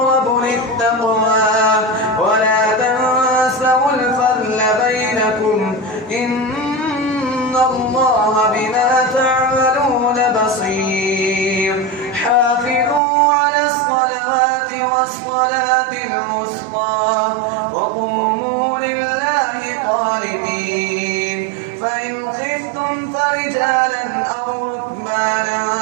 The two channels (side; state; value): left; drops out; at 13.0 s